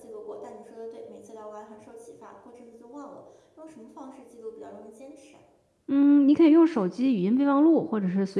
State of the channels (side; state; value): both; identical; correlation 1.00